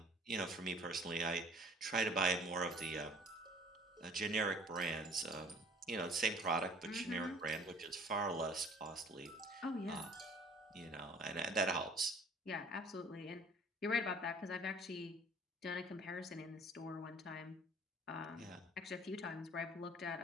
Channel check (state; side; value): normal; both; correlation 0.52